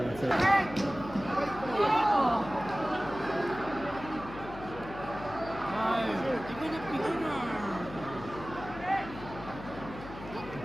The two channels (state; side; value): noise; left; hum, 13 dB below the sound